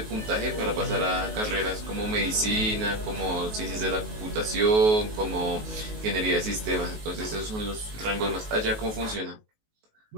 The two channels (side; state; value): left; late; 19 ms